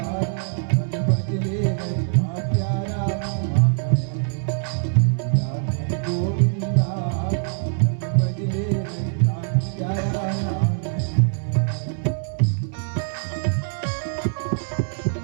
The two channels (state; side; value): silent; left; digital silence